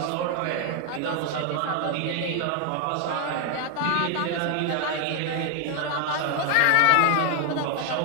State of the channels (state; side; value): different; both; correlation 0.00